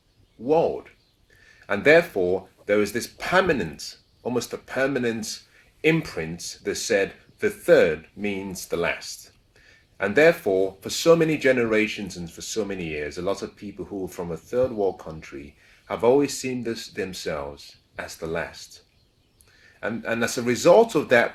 world. And therefore, there was this permanent, almost a permanent imprint that said the third means the last. And therefore, for so many generations and for so many years, a lot of people who are from a third world country have always seen themselves as the last. And as a result of that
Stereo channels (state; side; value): identical; both; correlation 1.00